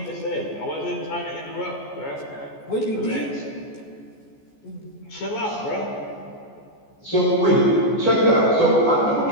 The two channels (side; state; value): right; late; 14 ms